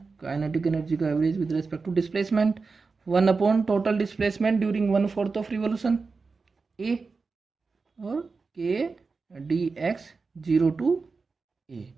काइनेटिक एनर्जी का average with respect to displacement 1 total displacement during 1/4 of revolution a, और k d x 0 to a,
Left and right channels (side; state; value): left; quieter; 4.4 dB